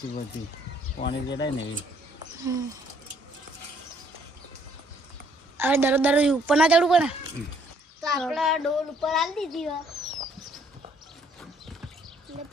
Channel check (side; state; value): both; normal; correlation 0.64